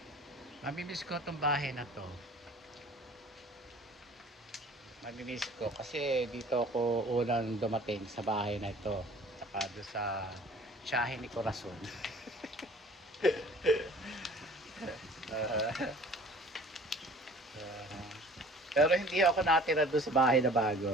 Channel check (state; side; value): normal; both; correlation 0.48